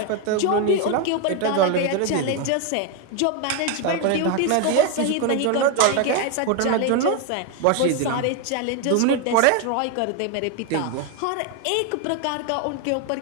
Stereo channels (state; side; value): different; both; correlation 0.01